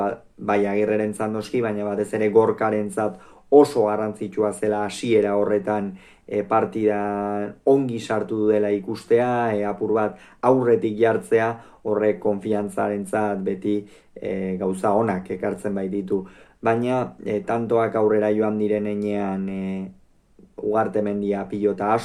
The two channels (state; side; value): identical; both; correlation 1.00